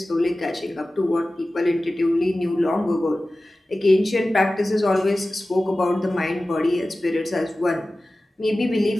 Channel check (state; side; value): normal; both; correlation 0.96